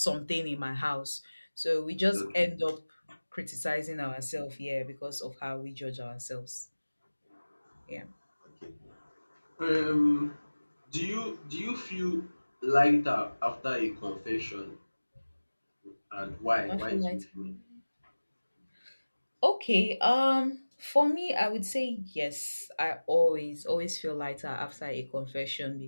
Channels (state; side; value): inverted; both; correlation -1.00